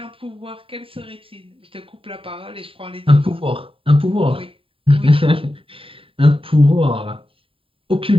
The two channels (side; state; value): left; late; 0.27 ms